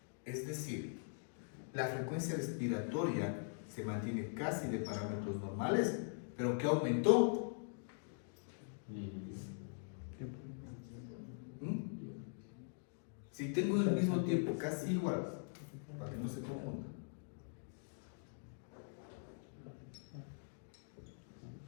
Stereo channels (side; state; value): right; silent; digital silence